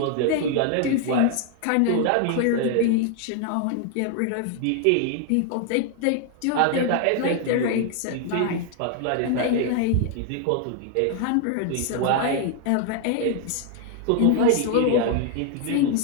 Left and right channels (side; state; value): both; different; correlation 0.00